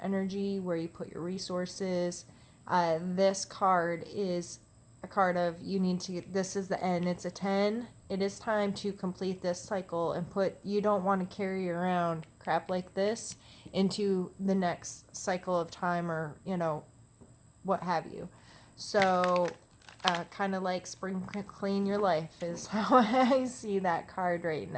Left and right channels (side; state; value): both; identical; correlation 1.00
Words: energy, where you put your resources. This card is a card of this is the end. It's a 10. It is time to complete this cycle and you don't want to carry around crap like this into the next cycle of time, or, what have you. So, kind of like spring clean your life is how I see that card right